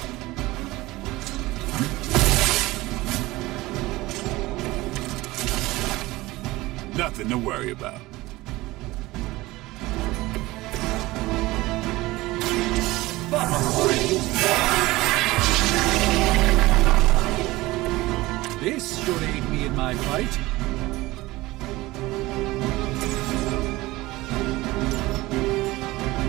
Nothing to worry about. This should aid me in my fight.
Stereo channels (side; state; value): left; quieter; 19.5 dB